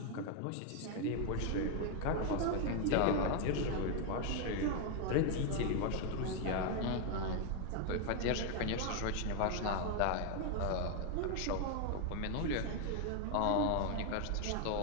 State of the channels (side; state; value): both; different; correlation 0.01